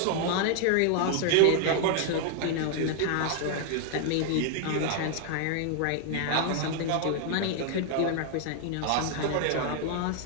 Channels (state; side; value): different; both; correlation 0.00